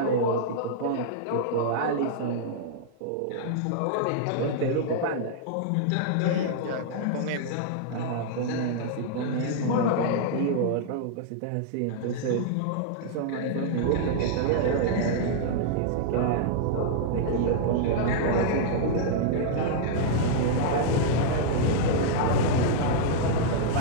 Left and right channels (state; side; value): different; both; correlation -0.02